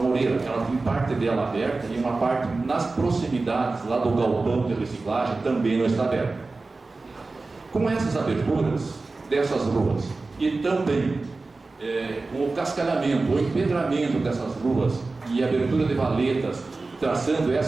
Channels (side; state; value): left; quieter; 3.6 dB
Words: que ela tem parte dela aberta e uma parte nas proximidades lá do galpão de reciclagem também não está aberta. Com essas aberturas dessas ruas e também com o cascalhamento, o empedramento dessas ruas e a abertura de valetas, traçando